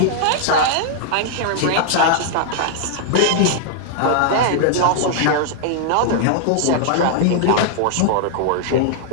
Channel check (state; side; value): different; both; correlation -0.01